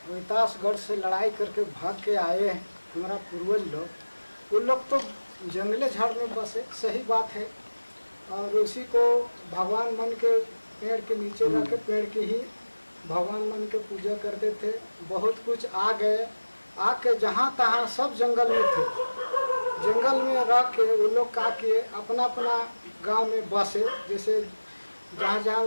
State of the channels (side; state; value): both; inverted; correlation -1.00